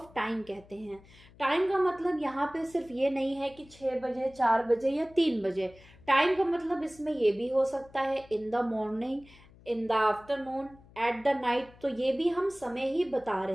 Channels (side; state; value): left; noise; hum, 24 dB below the sound